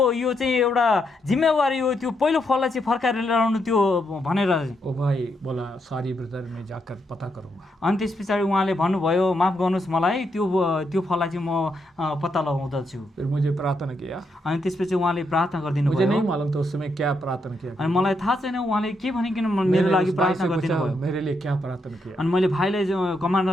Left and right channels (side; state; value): both; normal; correlation 0.80